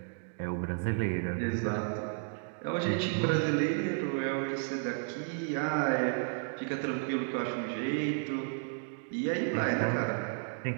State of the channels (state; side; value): silent; left; 56 dB below the other